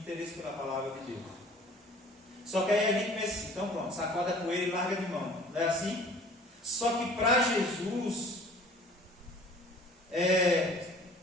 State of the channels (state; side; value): normal; both; correlation 0.49